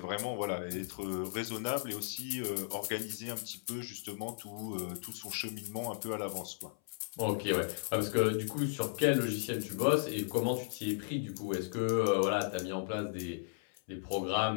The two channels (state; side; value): silent; right; 54 dB below the other